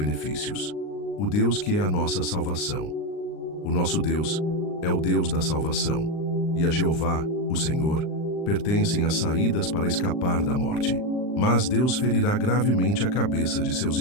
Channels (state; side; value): late; right; 39 ms